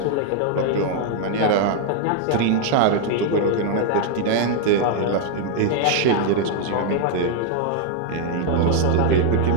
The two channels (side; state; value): both; different; correlation 0.00